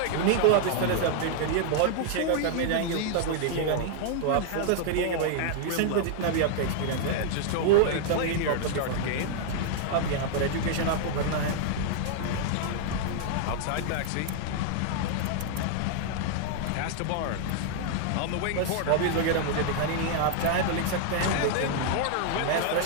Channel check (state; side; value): different; both; correlation 0.00